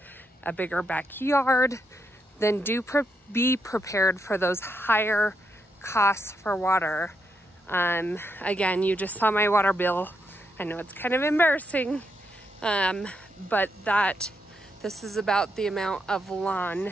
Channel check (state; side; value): normal; both; correlation 0.81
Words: a bigger backyard, then be prepared for those higher costs for water. Again, you just saw my water bill. I know it's kind of embarrassing, but this is about the amount of lawn